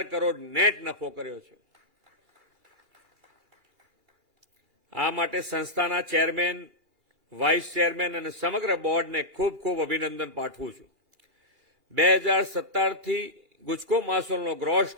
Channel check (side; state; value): left; late; 2.8 ms